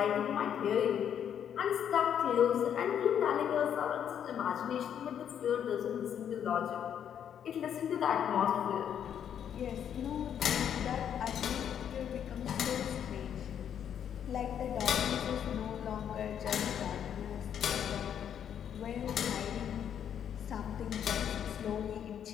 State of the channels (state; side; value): quieter; right; 9.0 dB